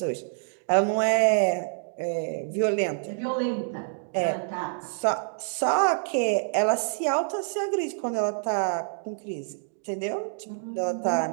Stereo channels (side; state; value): left; silent; digital silence